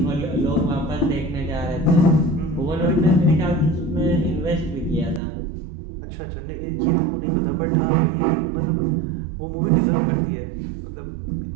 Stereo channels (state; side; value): drops out; left; at 5.2 s